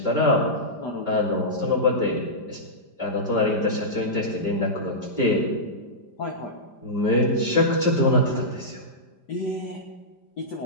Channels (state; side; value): late; right; 5.0 ms